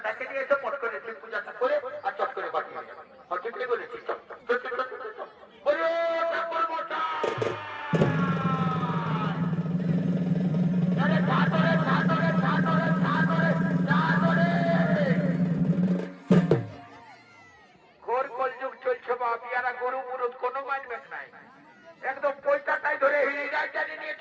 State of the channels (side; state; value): both; identical; correlation 1.00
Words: ডাকে নিয়ে এসে পট করে শিব পূজাটা করে আর চট করে বাড়িয়ে যাবো। ঠিকই বলেছিস। গরু মুরুদ কোনো মানবেন নাই, একদম পয়সাটাই ধরে হিড়ি রাজধানী নিয়ে